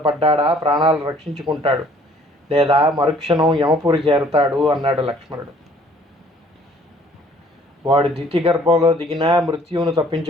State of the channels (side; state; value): both; normal; correlation 0.57